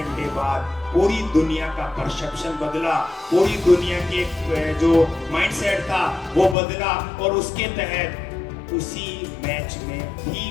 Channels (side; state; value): right; drops out; at 6.6 s